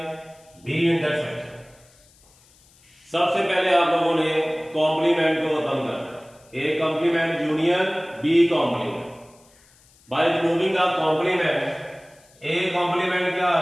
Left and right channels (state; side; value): noise; left; hiss, 29 dB below the sound